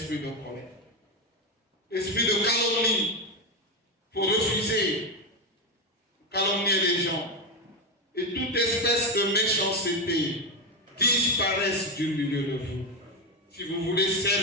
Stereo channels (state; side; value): normal; both; correlation 0.11